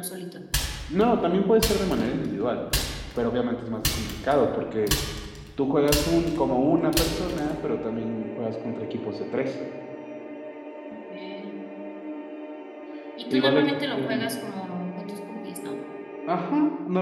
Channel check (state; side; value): identical; both; correlation 1.00